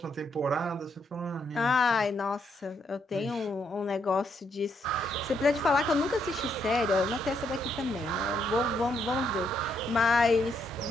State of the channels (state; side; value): normal; both; correlation 0.75